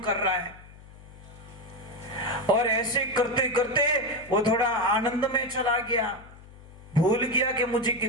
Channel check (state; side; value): noise; left; hum, 20 dB below the sound